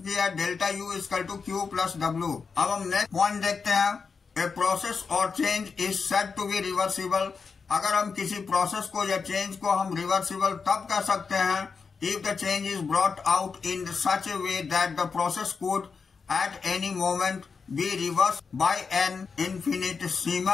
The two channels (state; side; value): quieter; right; 5.3 dB